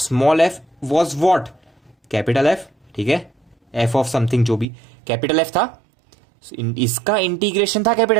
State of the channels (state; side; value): drops out; left; at 4.7 s